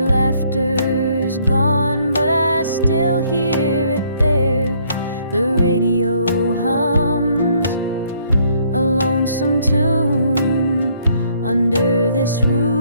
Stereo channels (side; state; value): both; inverted; correlation -0.66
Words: laughter's gone, but I still hear it there. The radio hums a lonesome tune. Under this